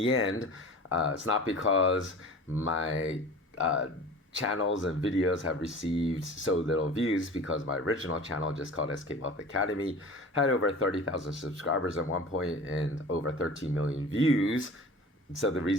end, it's not because my channels and videos have received so little views, because my original channel, just called SK Wealth Academy, had over 30,000 subscribers at one point and over 13 million views. So the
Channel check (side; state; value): both; normal; correlation 0.39